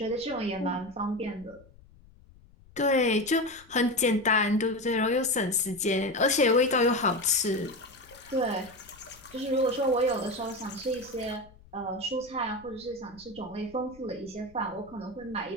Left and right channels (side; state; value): left; noise; rumble, 25 dB below the sound